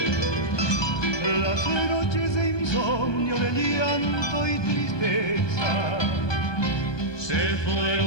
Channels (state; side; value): late; right; 1.1 ms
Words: Las noches de insomnio, de llanto y tristeza se